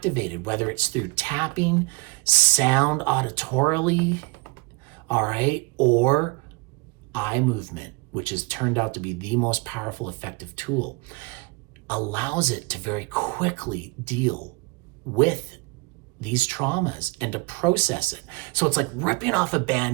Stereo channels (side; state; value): left; quieter; 27.3 dB